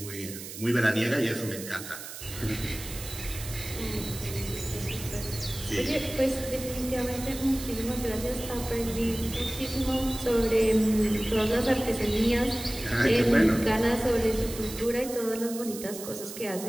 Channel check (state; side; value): noise; right; hiss, 11 dB below the sound